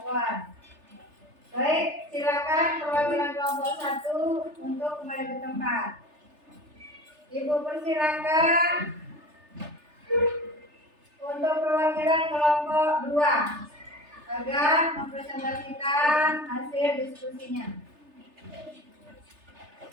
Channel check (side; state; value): left; late; 3.3 ms